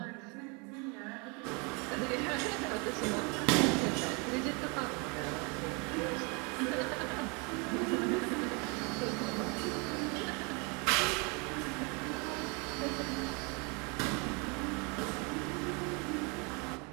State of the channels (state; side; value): quieter; left; 31.7 dB